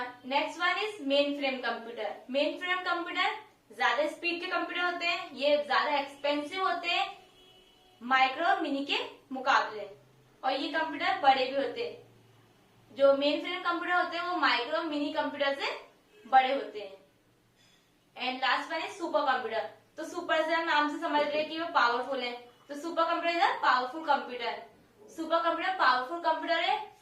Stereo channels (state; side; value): identical; both; correlation 1.00